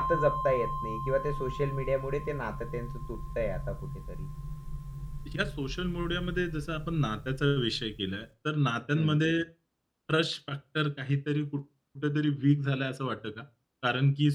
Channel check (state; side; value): identical; both; correlation 1.00